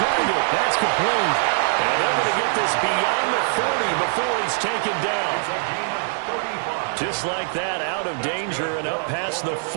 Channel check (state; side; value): silent; left; digital silence